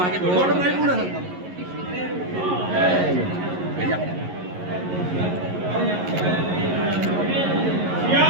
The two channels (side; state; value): left; late; 11 ms